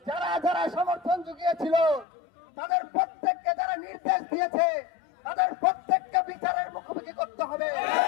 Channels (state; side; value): drops out; right; at 2.1 s